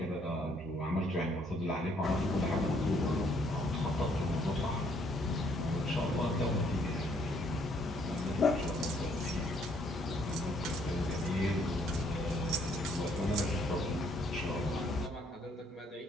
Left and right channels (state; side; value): normal; both; correlation 0.67